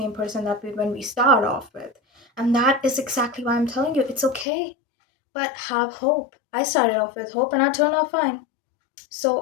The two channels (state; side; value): drops out; right; at 4.5 s